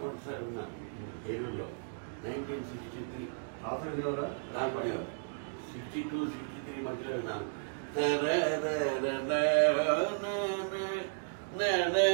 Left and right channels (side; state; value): left; silent; digital silence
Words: ఉన్నాను తెలుగులో 1963 దాని 62, 63 మధ్యలో విన్నాను.